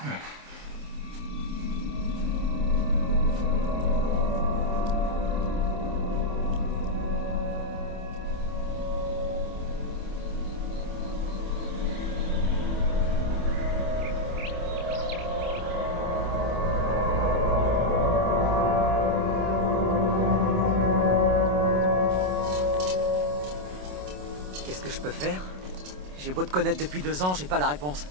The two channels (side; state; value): left; late; 27 ms